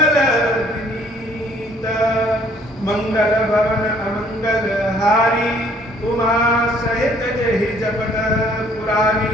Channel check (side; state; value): both; normal; correlation 0.60